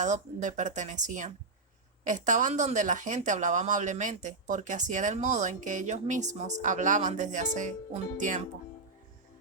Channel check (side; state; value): left; quieter; 3.8 dB